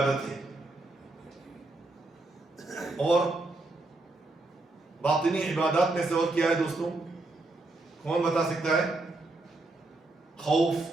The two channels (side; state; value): left; quieter; 3.0 dB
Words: ہے۔ اور باطنی عبادات میں سے اور کیا ہے دوستوں؟ کون بتا سکتا ہے؟